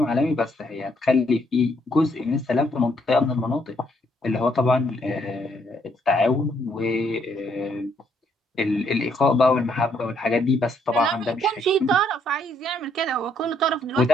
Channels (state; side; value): normal; both; correlation 0.71